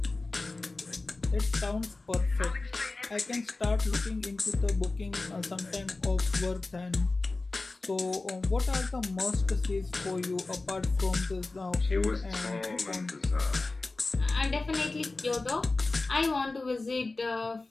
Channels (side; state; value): right; quieter; 3.4 dB